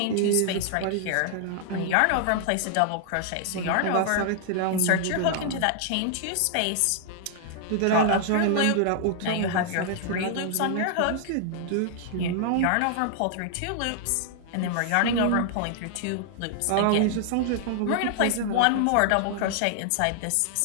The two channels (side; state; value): both; different; correlation -0.01